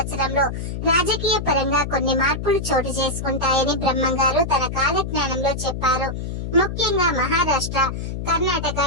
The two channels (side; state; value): left; noise; hum, 5 dB below the sound